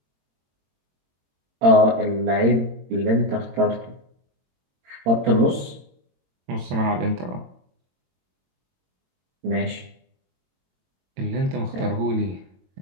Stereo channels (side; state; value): left; late; 22 ms